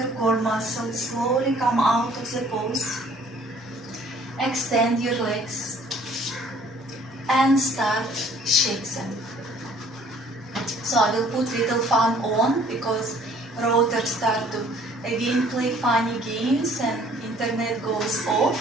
core muscles, slowly come out of the pose. Extend your legs and start shake them. So I will put little fan on because routers start to again play funny games and internet goes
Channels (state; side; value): normal; both; correlation 0.57